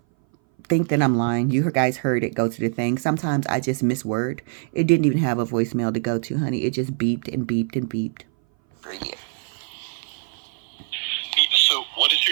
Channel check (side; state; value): left; silent; 59 dB below the other